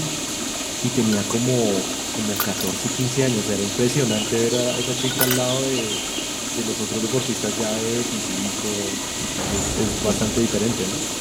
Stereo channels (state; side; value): identical; both; correlation 1.00